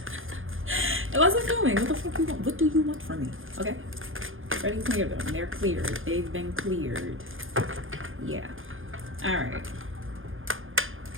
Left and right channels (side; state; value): left; late; 0.59 ms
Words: It wasn't filming. What the fuck you want? What do you want from me? Okay. Already cleared them. They're cleared. They've been cleared. Yeah. Alright.